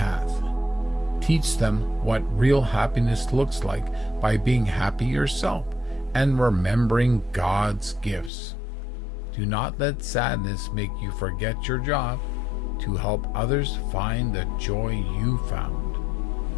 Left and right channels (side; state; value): right; drops out; at 8.3 s